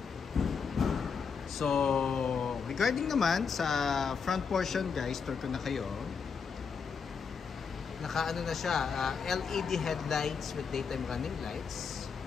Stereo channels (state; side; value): quieter; right; 5.9 dB